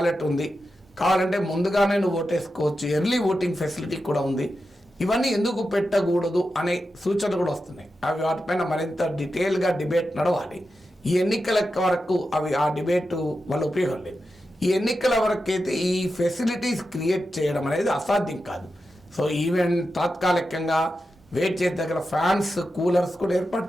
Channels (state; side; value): normal; both; correlation 0.90